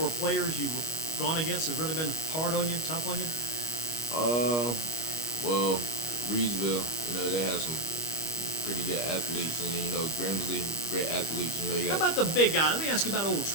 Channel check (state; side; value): late; right; 25 ms